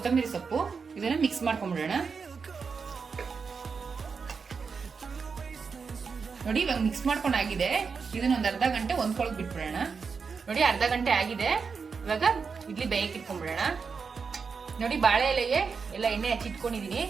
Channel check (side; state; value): left; quieter; 5.4 dB